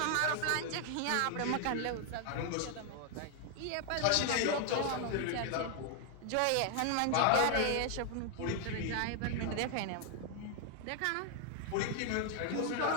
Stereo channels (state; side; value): different; both; correlation 0.00